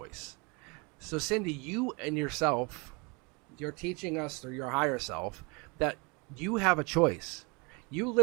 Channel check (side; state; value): left; quieter; 29.9 dB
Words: So Cindy, you and yourself, you're teaching us through your higher self that you have a choice. You